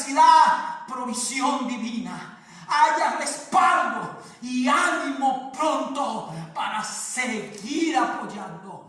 provisión divina. Haya respaldo y ánimo pronto para seguir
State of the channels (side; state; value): both; identical; correlation 1.00